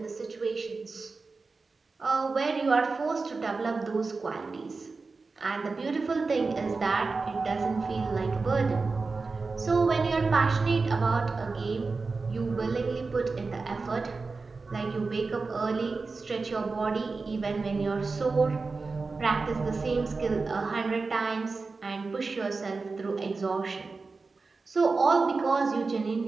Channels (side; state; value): left; quieter; 4.1 dB